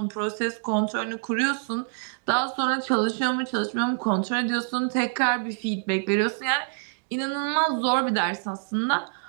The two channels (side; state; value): left; silent; digital silence